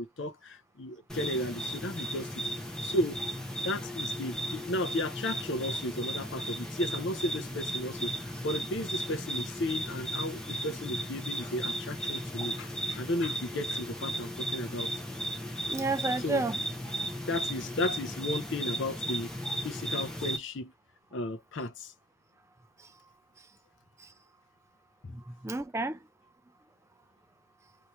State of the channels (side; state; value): both; normal; correlation 0.50